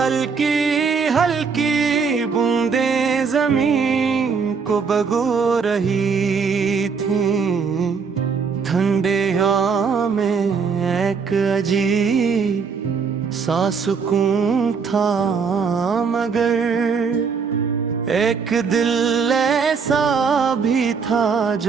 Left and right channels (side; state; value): left; quieter; 5.6 dB